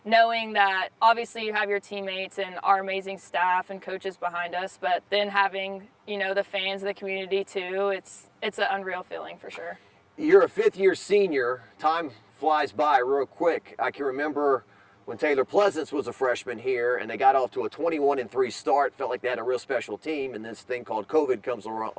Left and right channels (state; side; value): identical; both; correlation 1.00